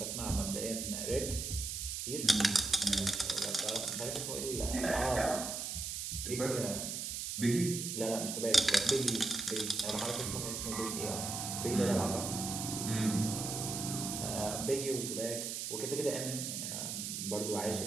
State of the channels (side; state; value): right; noise; hiss, 4 dB below the sound